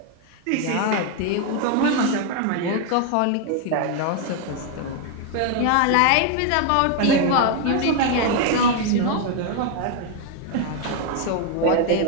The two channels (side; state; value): both; different; correlation 0.01